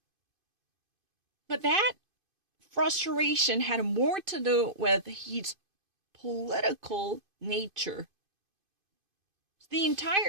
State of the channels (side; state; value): left; late; 2.5 ms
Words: But that frustration had more to do with his political nature. The